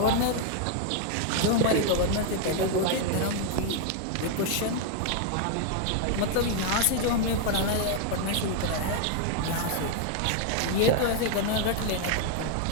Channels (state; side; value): different; both; correlation 0.00